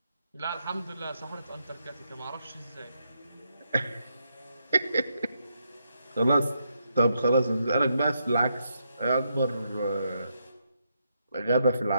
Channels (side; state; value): both; inverted; correlation -0.80